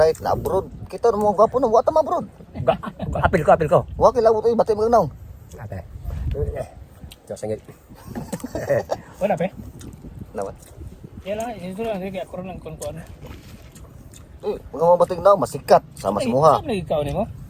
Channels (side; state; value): both; identical; correlation 1.00